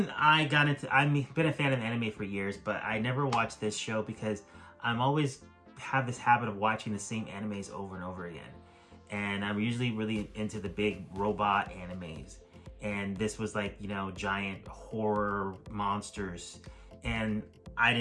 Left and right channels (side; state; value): both; identical; correlation 1.00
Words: I've been a fan of anime for years, but I never watched this show because I'm always have this habit of watching the same animes over and over again. And I'm usually really into the big robot animes. And this was like, giant horror monsters. And I